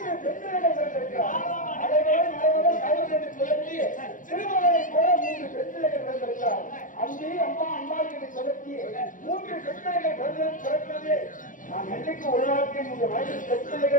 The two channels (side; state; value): right; late; 0.38 ms